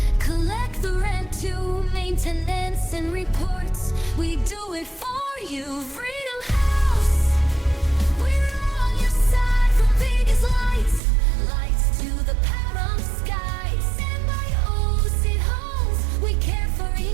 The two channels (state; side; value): drops out; left; at 11.0 s